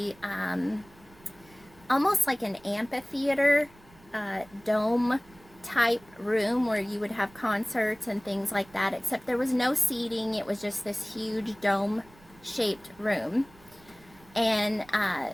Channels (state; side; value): noise; right; rumble, 26 dB below the sound